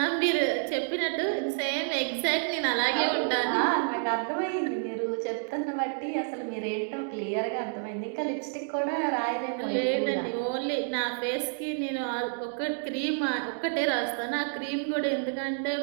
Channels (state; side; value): silent; left; digital silence